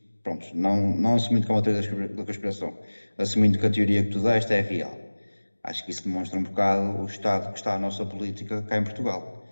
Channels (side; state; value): both; inverted; correlation -1.00